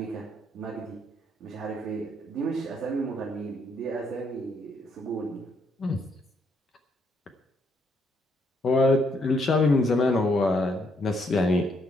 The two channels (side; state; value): both; normal; correlation 0.72